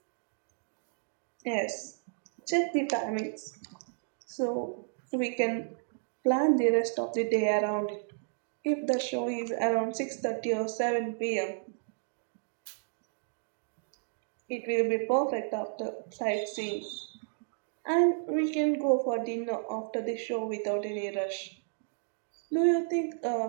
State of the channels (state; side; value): silent; left; digital silence